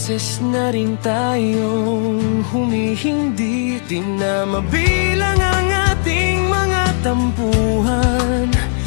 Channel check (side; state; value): right; silent; digital silence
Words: na rin tayong humihindi. Di na mabilang ang ating mga tampuhan,